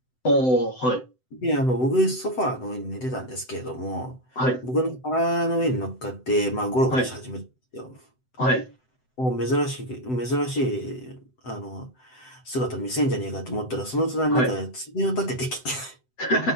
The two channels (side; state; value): right; late; 7.8 ms